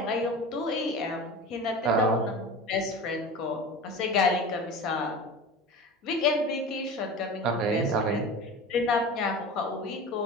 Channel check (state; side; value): normal; both; correlation 0.33